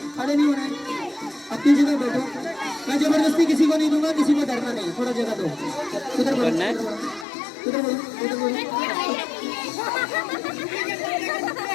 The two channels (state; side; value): drops out; right; at 7.2 s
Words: खड़े नहीं हो रहे हैं, अपनी जगह बैठो। मैं जबरदस्ती किसी को नहीं दूंगा, किसी को डरना नहीं, थोड़ा जगह दो। उधर बोलो, उधर बोलो, उधर बोलो।